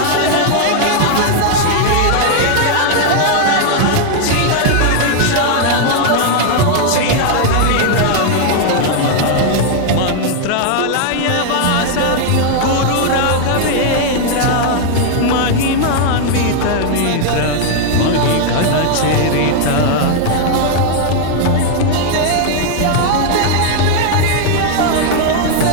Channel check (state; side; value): different; both; correlation 0.00